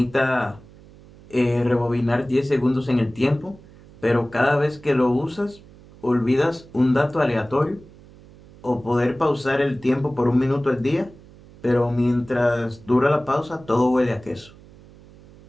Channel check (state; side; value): noise; right; hum, 23 dB below the sound